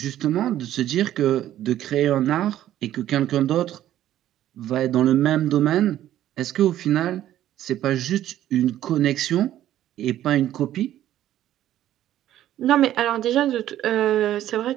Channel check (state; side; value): quieter; left; 12.5 dB